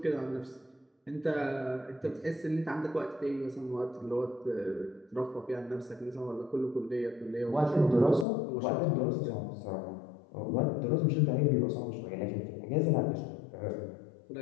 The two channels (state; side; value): drops out; right; at 8.2 s